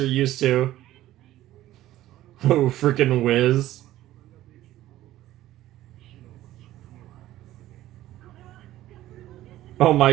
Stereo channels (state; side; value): quieter; left; 14.5 dB